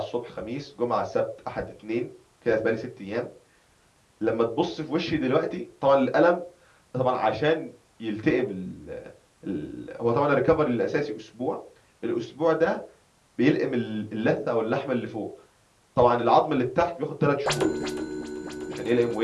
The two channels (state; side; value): identical; both; correlation 1.00